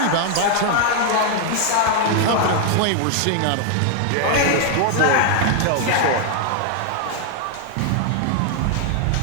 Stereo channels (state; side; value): different; both; correlation 0.00